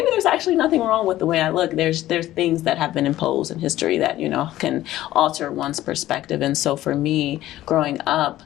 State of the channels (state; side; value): quieter; right; 14.6 dB